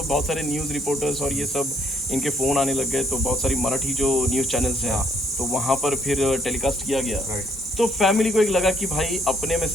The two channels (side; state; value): both; normal; correlation 0.68